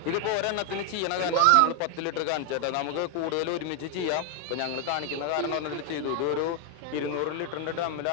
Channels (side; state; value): both; different; correlation 0.01